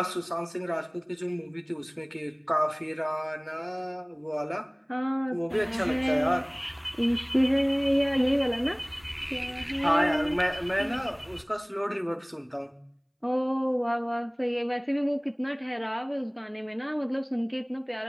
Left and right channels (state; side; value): identical; both; correlation 1.00